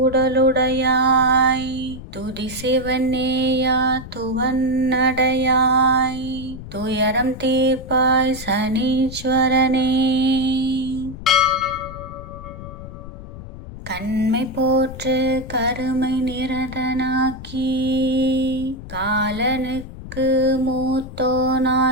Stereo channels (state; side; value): noise; left; rumble, 13 dB below the sound